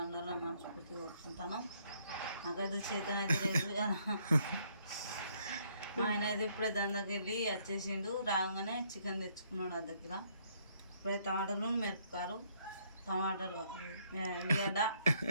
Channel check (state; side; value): inverted; both; correlation -0.68